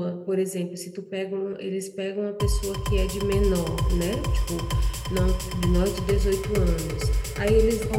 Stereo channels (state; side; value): identical; both; correlation 1.00